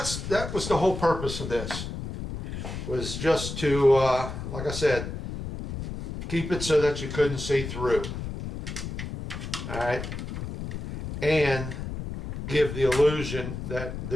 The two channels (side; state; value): left; noise; rumble, 7 dB below the sound